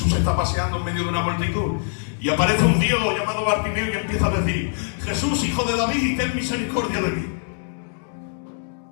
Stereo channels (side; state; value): right; silent; digital silence